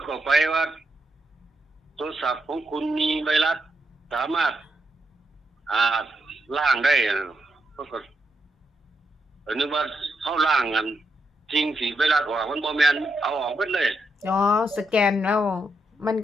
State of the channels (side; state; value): both; normal; correlation 0.82